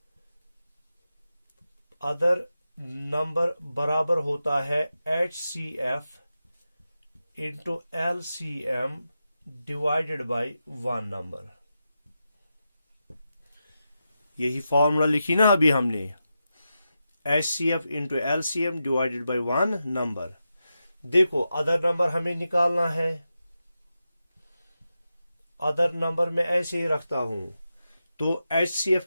अदर नंबर बराबर होता है HCF into LCM divided by one number. यही फॉर्मूला लिखी ना अभी हमने, HCF into LCM divided by one number. देखो अदर नंबर हमें निकालना है। अदर नंबर में ऐसे ही रखता हूं, तो HCF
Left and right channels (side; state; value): both; inverted; correlation -0.89